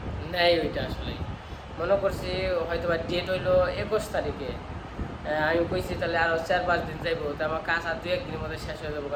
নেয় ওইটা। আসলে মনে করছি হয়তো বা ডেট হইলো 21 তারিখে, আমি কইছি তাহলে আরও 4-5 দিন যাইবো, তো আমার কাজ আর 2-1 দিনের মধ্যে শেষ হয়ে যাবো।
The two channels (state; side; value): identical; both; correlation 1.00